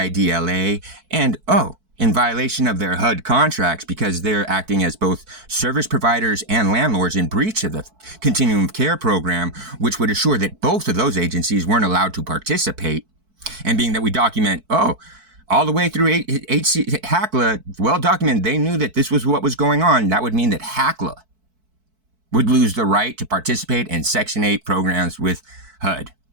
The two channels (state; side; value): late; left; 4.6 ms